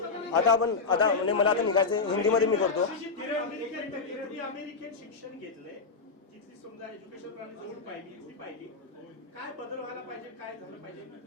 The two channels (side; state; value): right; quieter; 4.4 dB